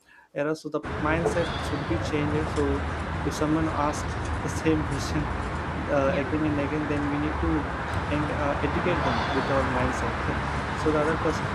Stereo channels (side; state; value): both; identical; correlation 1.00